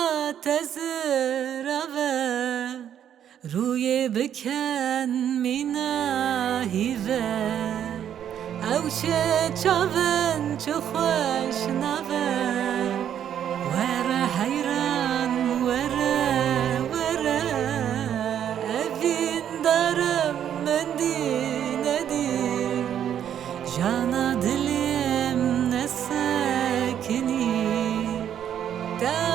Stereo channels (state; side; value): quieter; left; 9.7 dB